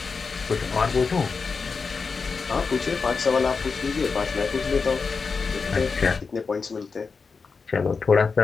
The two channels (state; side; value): quieter; right; 4.9 dB